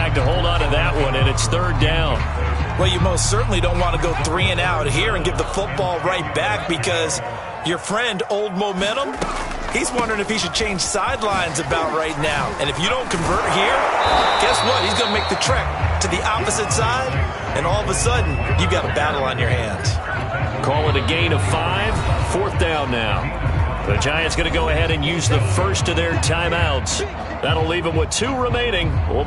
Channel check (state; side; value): identical; both; correlation 1.00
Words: to hold on to that one, and it's 3rd down. Well, you most certainly don't want to go 3 and out here and give the football right back because your friend, Old Momentum, he's wondering if he should change sidelines about right now. And if you don't convert here, guess what? He's going to make the trek to the opposite side, and all of a sudden, you've got a battle on your hands. Call it a gain of 5, 4th down now. The Giants going to go ahead and use the first of their timeouts. That'll leave them with 2 remaining. We'll